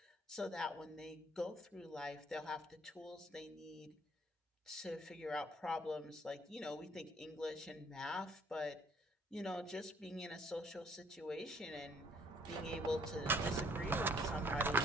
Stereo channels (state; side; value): normal; both; correlation 0.62